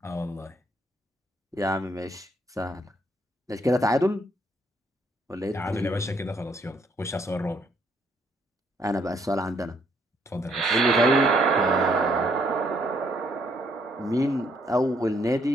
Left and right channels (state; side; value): normal; both; correlation 0.70